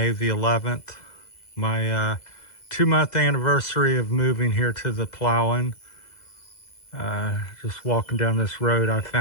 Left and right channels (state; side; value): late; right; 2.0 ms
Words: the 11th. My 2-month anniversary of moving here to the Palawan. Just walking down this road, I